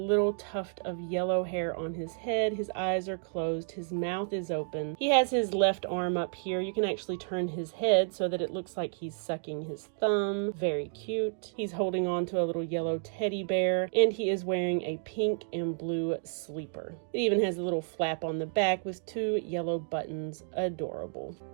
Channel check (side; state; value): left; silent; digital silence